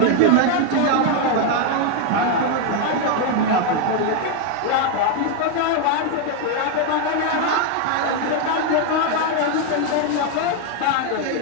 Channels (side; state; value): both; different; correlation 0.01